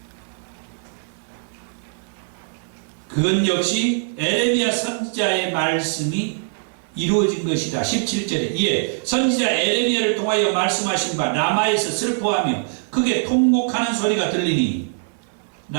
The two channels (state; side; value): silent; left; 59 dB below the other